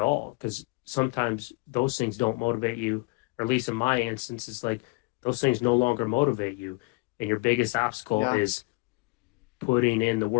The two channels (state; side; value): quieter; right; 27.1 dB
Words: Because sometimes those things don't motivate you, or at least in my instance, it's like those things no longer motivate you, and your biggest obstacle Yeah. is putting in the